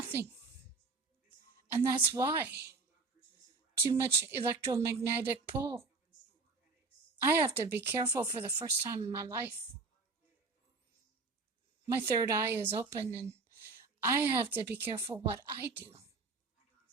And that's why. Too much electromagnetic pull. I have to be careful for the first time in my life. My third eye is open, and I have to be careful what I do.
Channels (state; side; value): quieter; left; 4.0 dB